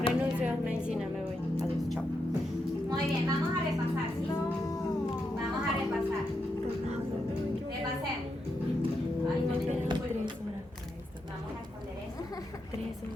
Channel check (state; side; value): normal; both; correlation 0.84